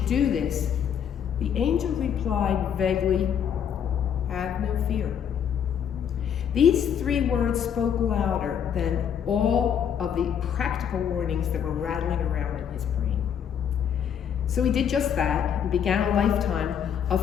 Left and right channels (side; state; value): right; quieter; 8.4 dB